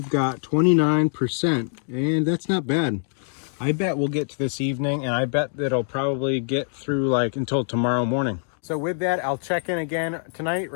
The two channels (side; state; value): right; silent; digital silence